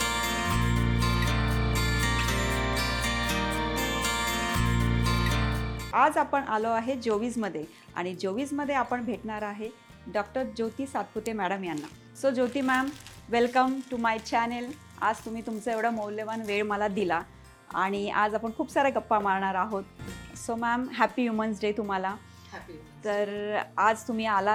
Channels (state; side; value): identical; both; correlation 1.00